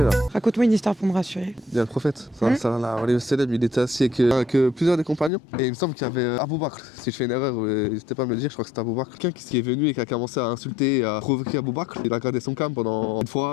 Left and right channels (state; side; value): drops out; right; at 5.3 s